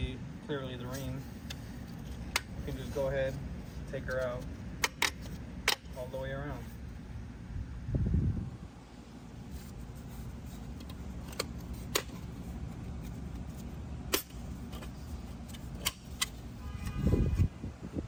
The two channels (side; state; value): both; identical; correlation 1.00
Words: clearly the ring. You can just go ahead, take her out all the way around.